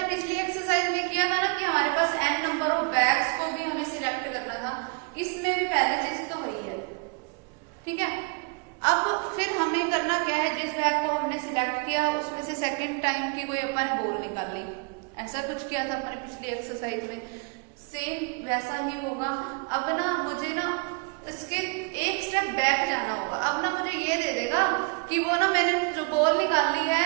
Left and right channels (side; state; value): left; quieter; 33.4 dB